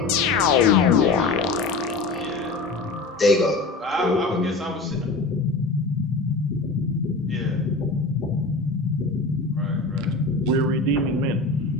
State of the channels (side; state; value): right; quieter; 3.6 dB